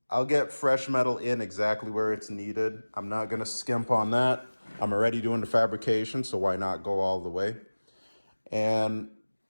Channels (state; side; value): inverted; both; correlation -1.00